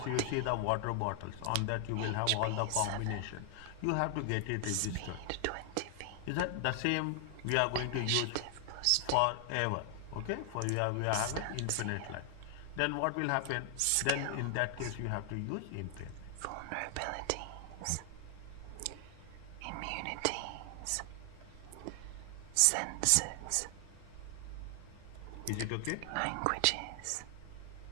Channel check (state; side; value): different; both; correlation 0.00